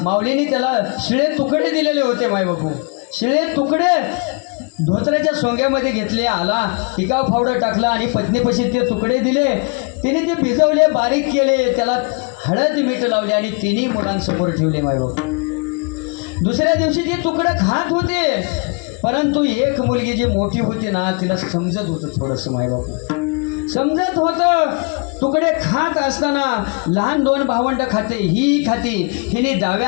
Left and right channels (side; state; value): right; quieter; 34.4 dB